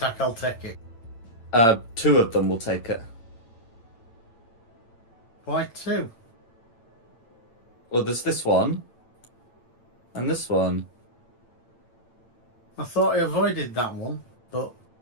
I'll take it. 2 of them will take it. Why 2? Well, there's this one. And this one. I thought I avoided that one, but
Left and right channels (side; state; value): right; late; 8.9 ms